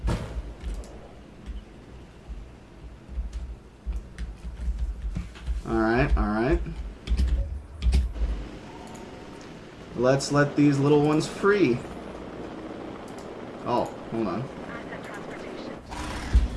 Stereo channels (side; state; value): both; identical; correlation 1.00